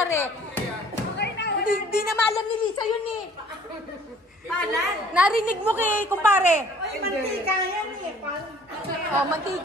Hindi na maalam ni Lisa yun eh. Palad. Narinig mo kay kumpare. Ay, mantika yan eh. Oh,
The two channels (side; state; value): both; normal; correlation 0.54